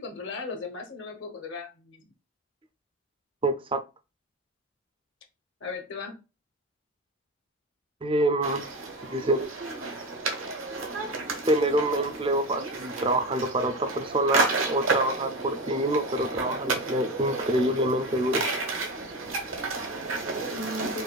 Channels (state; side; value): normal; both; correlation 0.20